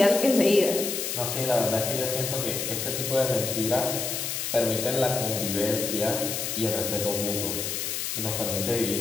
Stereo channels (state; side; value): noise; left; hiss, 3 dB below the sound